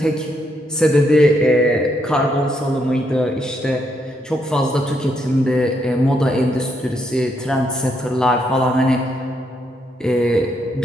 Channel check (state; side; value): normal; both; correlation 0.76